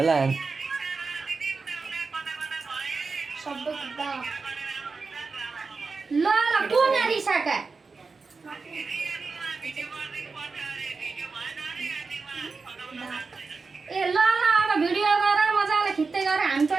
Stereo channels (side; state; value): left; quieter; 4.4 dB